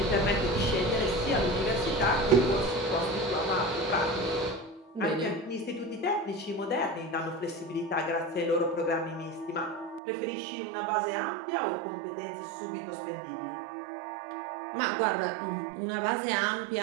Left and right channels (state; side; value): drops out; left; at 10.0 s